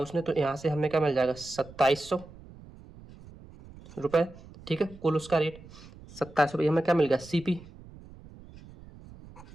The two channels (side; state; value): right; noise; rumble, 19 dB below the sound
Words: तो यहाँ से हमें क्या मिल जाएगा 2700 रुपये। ठीक है, कुल उसका रेट 2700 हमें क्या मिल गया सीपी।